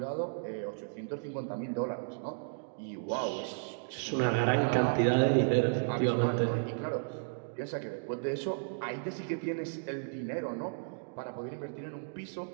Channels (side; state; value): left; silent; digital silence